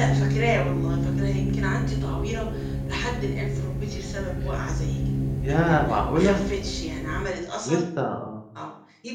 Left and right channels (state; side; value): identical; both; correlation 1.00